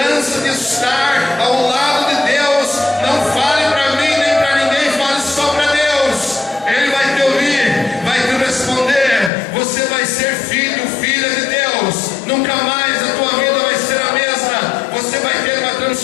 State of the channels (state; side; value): drops out; right; at 9.3 s